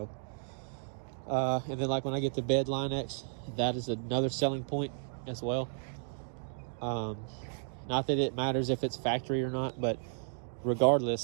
and then like when I get the bed Line X, that is another selling point as well. Not that it matters if it's factory or not, but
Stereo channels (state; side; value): silent; left; digital silence